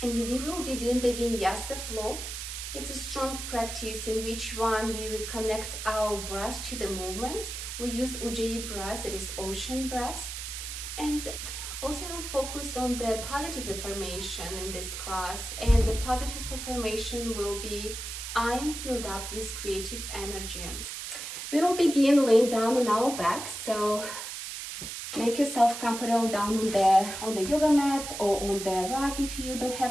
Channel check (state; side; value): noise; right; hiss, 7 dB below the sound